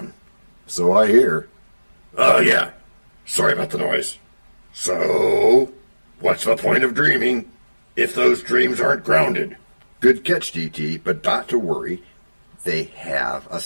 So I hear. Oh, yeah. Sorry about the noise. So, what's the point of dreaming if those dreams aren't grounded. Good catch, DT, but not to worry. They have a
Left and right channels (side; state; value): both; inverted; correlation -1.00